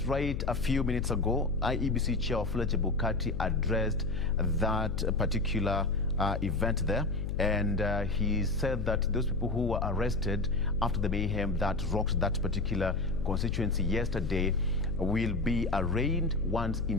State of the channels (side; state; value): left; noise; hum, 4 dB below the sound